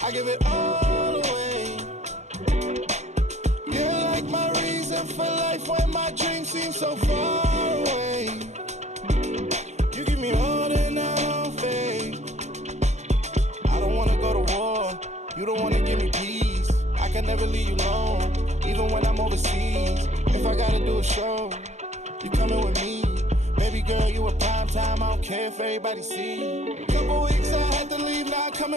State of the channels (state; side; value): late; left; 0.33 ms